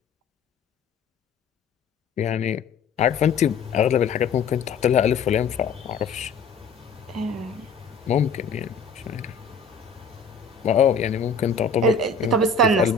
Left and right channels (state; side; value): quieter; right; 4.6 dB